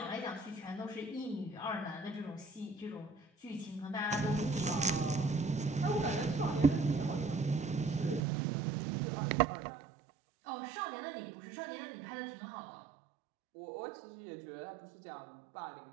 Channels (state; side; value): drops out; left; at 8.2 s